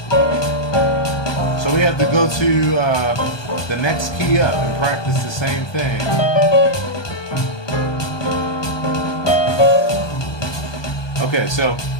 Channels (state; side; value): late; right; 1.2 ms